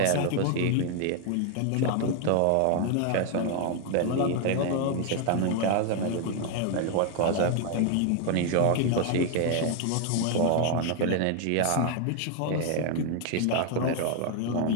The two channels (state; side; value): different; both; correlation 0.00